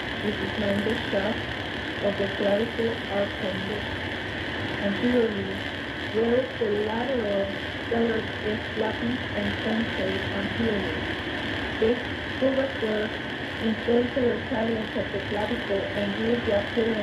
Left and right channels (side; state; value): both; identical; correlation 1.00